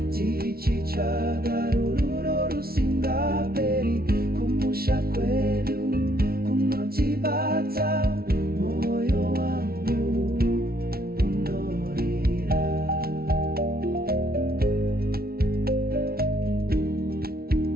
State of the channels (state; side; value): late; left; 0.44 ms